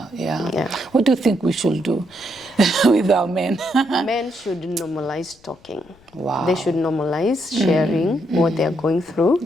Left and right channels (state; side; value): noise; left; rumble, 29 dB below the sound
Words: What do you think we should do with our men? Men should normalize talking. Wow. They should normalize sharing what they're going through.